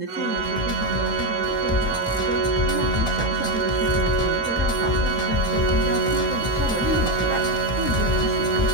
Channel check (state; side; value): normal; both; correlation 0.08